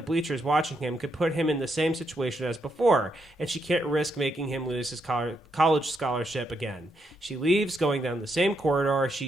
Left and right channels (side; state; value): both; normal; correlation 0.79